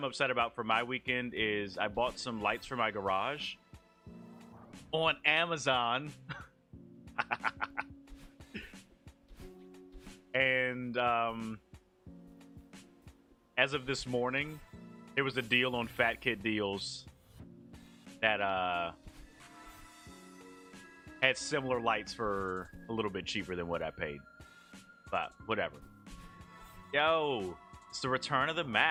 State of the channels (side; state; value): both; identical; correlation 1.00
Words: upset about for my weekend is I bought some lights for my garage on Amazon. And as of this morning, there was a deal on Fat Kid Deals that had similar lights for a little bit cheaper than what I paid. But whatever. Yo, it's the return of the